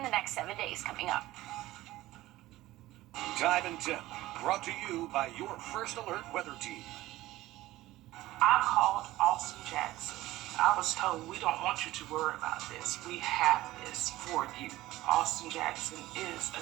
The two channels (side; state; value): left; quieter; 16.8 dB